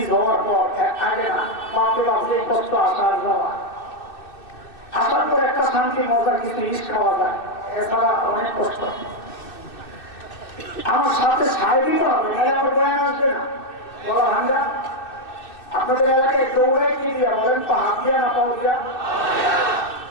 হওয়ার পর আগে না বাপরে বাপ যে কষ্ট আসার যাওয়া, আসার পর একটা শান্তি মজা কিছু ইস খাওয়া যায়, এছাড়া অনেক কষ্ট। আমার সাথে সাই দিতে হবে, নাহলে আমার বয়ান আসবে না। বলা ভাঙ্গা আপনাদের এলাকায় দৌড়ায় কি দিয়া বলেন তো? হাত দিয়া না পাও দিয়া?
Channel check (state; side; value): late; right; 2.6 ms